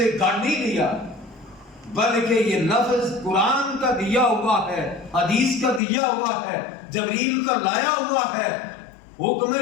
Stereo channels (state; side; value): drops out; right; at 5.8 s